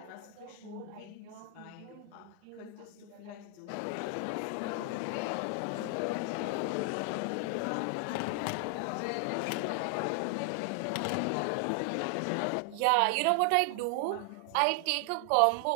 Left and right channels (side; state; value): both; different; correlation 0.00